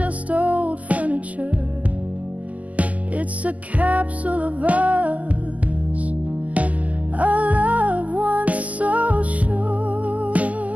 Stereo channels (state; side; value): late; left; 0.075 ms